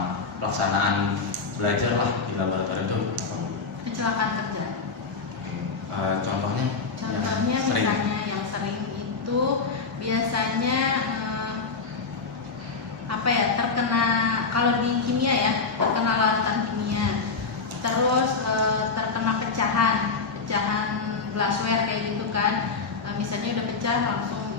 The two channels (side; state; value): right; quieter; 4.6 dB